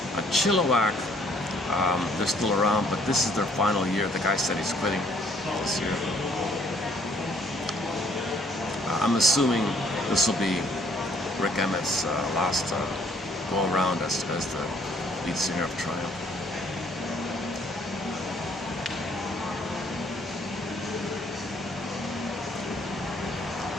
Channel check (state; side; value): normal; both; correlation 0.63